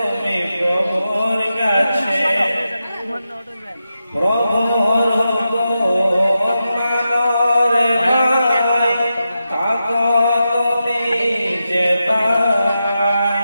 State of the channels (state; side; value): inverted; both; correlation -0.89